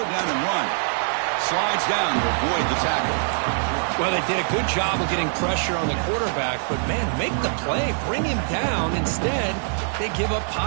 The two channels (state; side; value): silent; left; digital silence